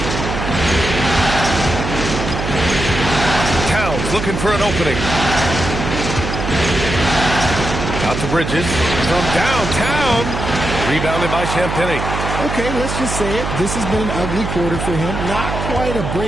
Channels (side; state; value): right; noise; hum, 4 dB below the sound